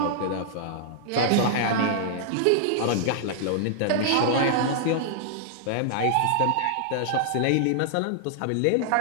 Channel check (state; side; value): different; both; correlation -0.01